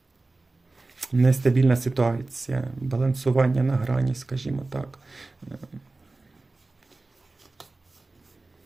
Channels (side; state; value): left; quieter; 3.2 dB